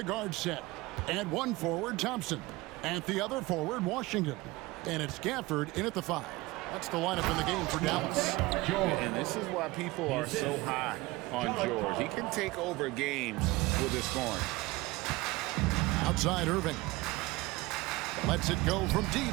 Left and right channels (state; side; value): quieter; left; 20.9 dB